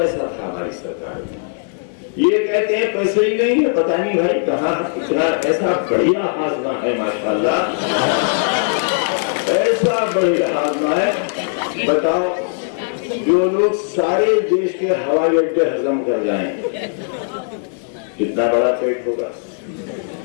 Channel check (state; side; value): silent; right; 63 dB below the other